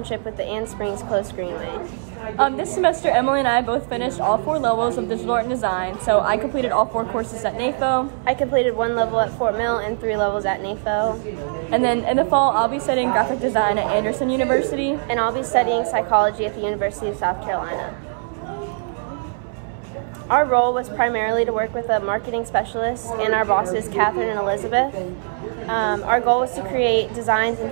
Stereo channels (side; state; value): left; silent; 60 dB below the other